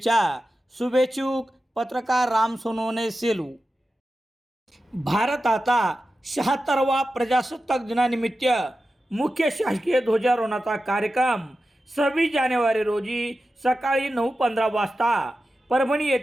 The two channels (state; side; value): normal; both; correlation 0.92